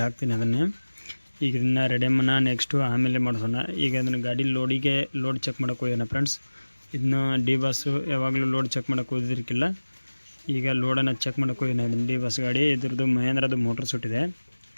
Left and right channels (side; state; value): both; inverted; correlation -1.00